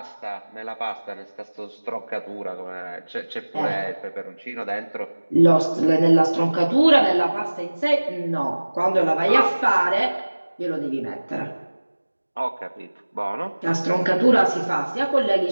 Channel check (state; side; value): inverted; both; correlation -1.00